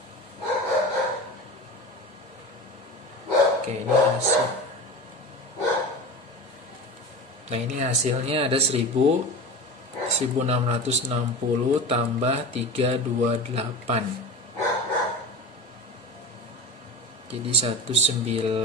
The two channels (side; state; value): both; normal; correlation 0.30